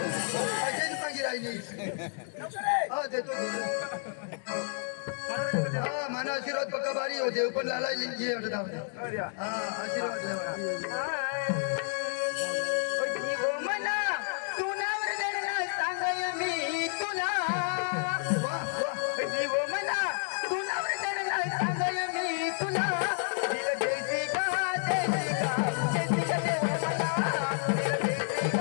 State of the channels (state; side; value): silent; right; 57 dB below the other